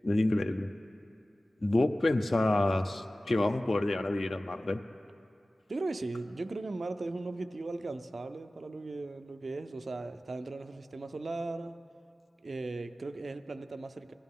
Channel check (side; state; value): both; normal; correlation 0.96